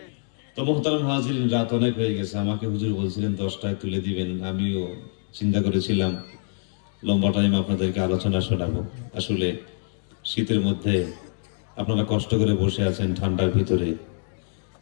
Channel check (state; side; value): silent; right; digital silence